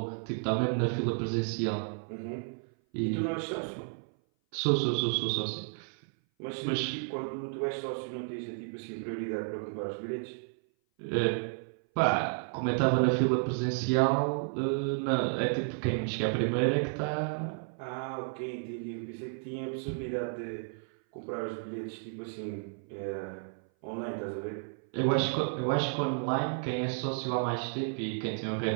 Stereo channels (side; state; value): left; silent; 56 dB below the other